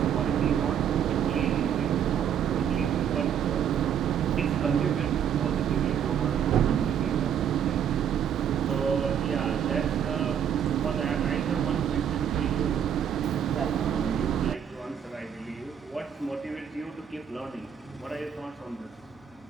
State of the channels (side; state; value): left; quieter; 8.6 dB